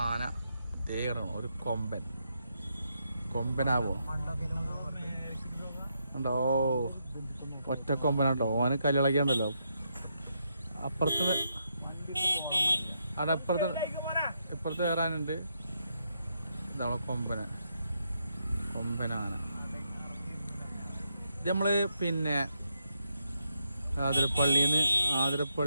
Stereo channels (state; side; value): inverted; both; correlation -0.79